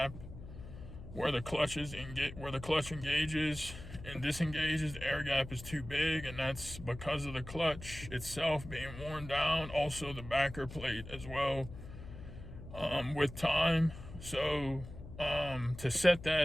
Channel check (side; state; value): left; noise; hum, 13 dB below the sound